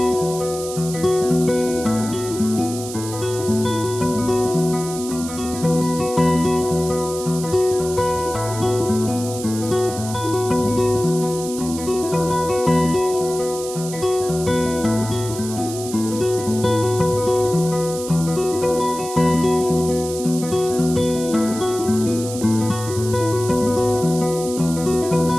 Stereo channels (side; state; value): right; noise; hiss, 11 dB below the sound